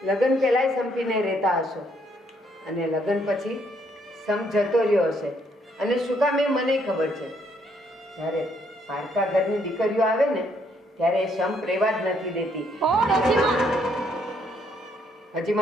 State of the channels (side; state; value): both; normal; correlation 0.70